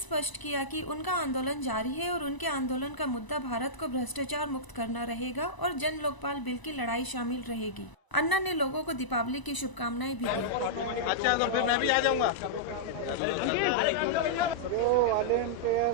किया कि उनका आंदोलन जारी है और उनके आंदोलन का मुद्दा भारत को भ्रष्टाचार मुक्त करना रहेगा और जन लोकपाल बिल की लड़ाई शामिल रहेगी। अन्ना ने लोगों को दीपावली की शुभकामनाएं भी दी। अच्छा, तो फिर मैं भी आ जाऊंगा। जो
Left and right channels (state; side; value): late; right; 1.0 ms